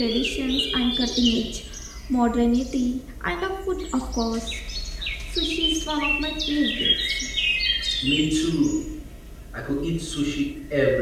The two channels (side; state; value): both; identical; correlation 1.00